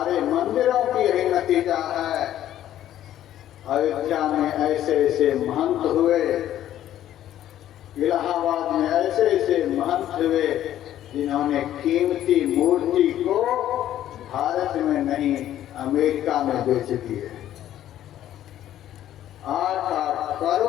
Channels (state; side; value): quieter; right; 12.1 dB